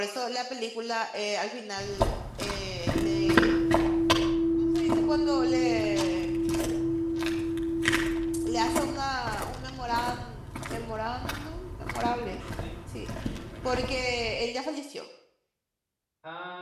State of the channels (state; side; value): identical; both; correlation 1.00